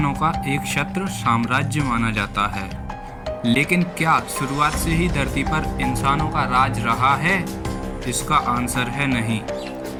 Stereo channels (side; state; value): both; identical; correlation 1.00